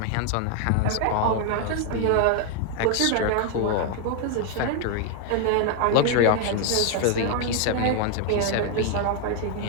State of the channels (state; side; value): different; both; correlation 0.00